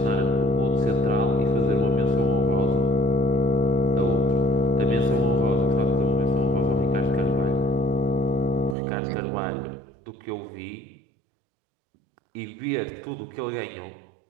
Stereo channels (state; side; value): drops out; left; at 8.8 s